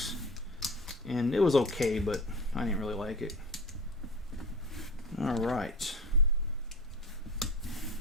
and it was okay, but I didn't really like it. All right.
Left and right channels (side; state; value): both; normal; correlation 0.34